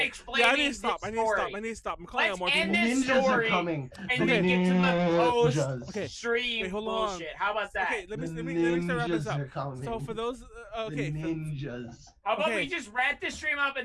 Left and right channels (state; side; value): identical; both; correlation 1.00